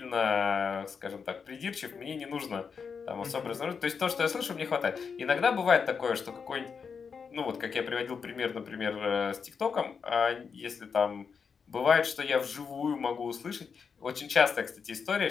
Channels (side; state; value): right; quieter; 6.0 dB